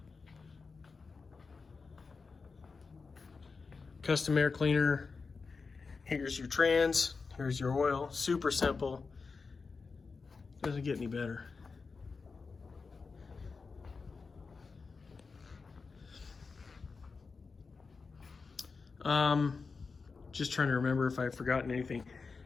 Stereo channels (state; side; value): quieter; right; 4.6 dB